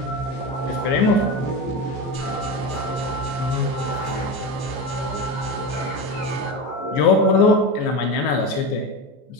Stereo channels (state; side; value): late; right; 14 ms